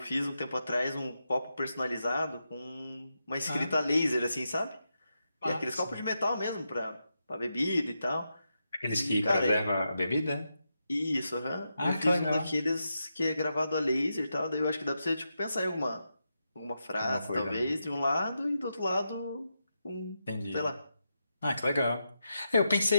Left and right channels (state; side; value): inverted; both; correlation -0.86